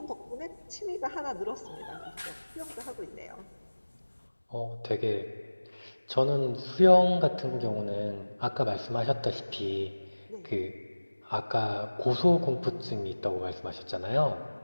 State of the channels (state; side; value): inverted; both; correlation -1.00